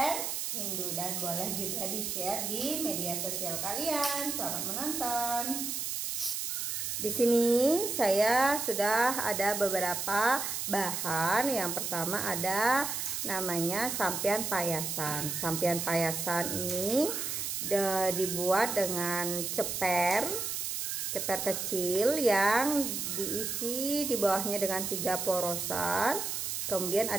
Hindu, dan boleh juga di-share di media sosial kalian. Selamat menonton. Di sini saya sudah ada beberapa bahan. Yang pertama ada namanya sampian payasan. Sampian payasan ini dibuat dengan ceper kecil yang diisi di bawahnya dengan 3 porosan. Kemudian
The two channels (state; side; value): noise; right; hiss, 2 dB below the sound